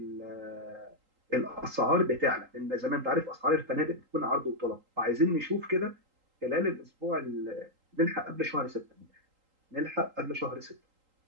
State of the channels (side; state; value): left; late; 3.8 ms